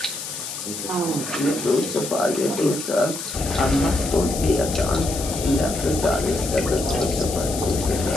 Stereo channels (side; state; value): left; noise; hiss, 7 dB below the sound